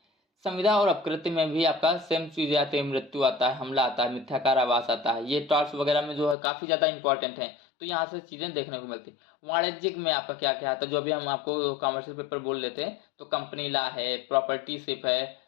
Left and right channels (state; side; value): drops out; right; at 6.4 s